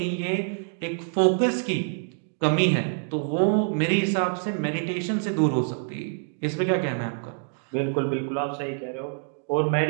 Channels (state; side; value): silent; left; 61 dB below the other